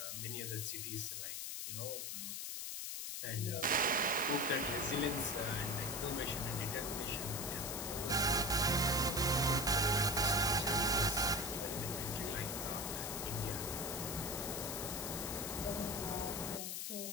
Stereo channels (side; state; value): left; noise; hiss, 4 dB below the sound